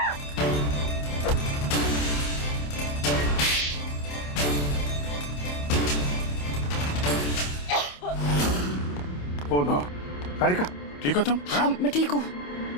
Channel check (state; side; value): late; right; 28 ms